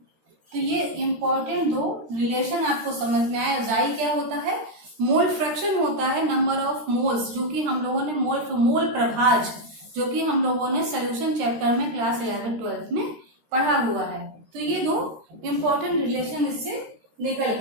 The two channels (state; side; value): late; left; 13 ms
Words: तो ये इंपॉर्टेंट दो रिलेशन आपको समझ में आया। Xi क्या होता है? मोल फ्रैक्शन होता है नंबर ऑफ मोल्स, जो कि हम लोगों ने मोल प्रभाज, जो कि हम लोगों ने सोल्यूशन चैप्टर में क्लास 11-12 में पढ़ा हुआ है। तो ये दो इंपॉर्टेंट रिलेशन इससे निकल